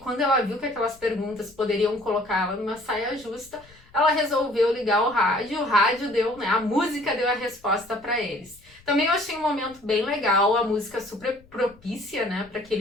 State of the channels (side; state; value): left; noise; rumble, 27 dB below the sound